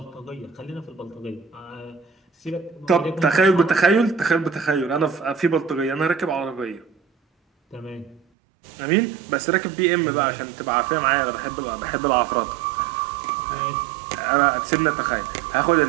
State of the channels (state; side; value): drops out; left; at 8.2 s